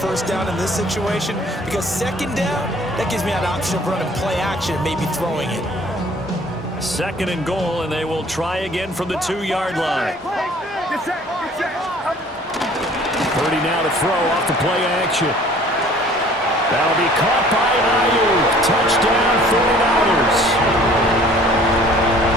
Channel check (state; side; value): normal; both; correlation 0.52